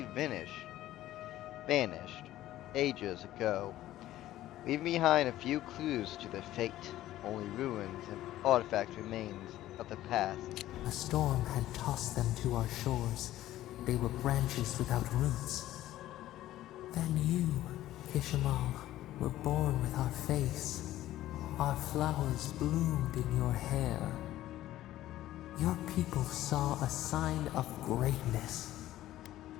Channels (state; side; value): quieter; right; 14.4 dB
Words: vanished ages ago, leaving behind a few clues to their fate. Only ruins and artifacts remains of the past. A storm had tossed them to our shores. They were branches without roots. Then you, Kimal, were born with our face. Our flowers bloomed in your hair. Your people saw a sign of greatness.